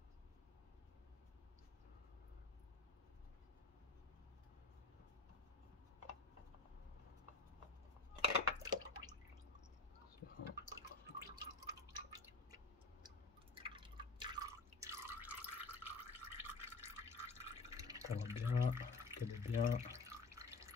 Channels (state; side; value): quieter; right; 3.8 dB